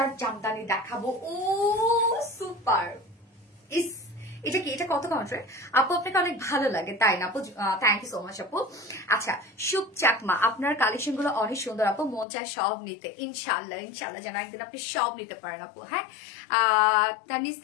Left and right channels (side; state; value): right; drops out; at 12.2 s